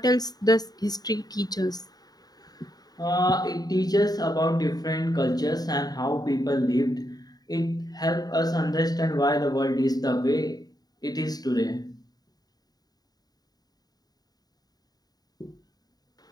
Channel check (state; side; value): late; right; 0.19 ms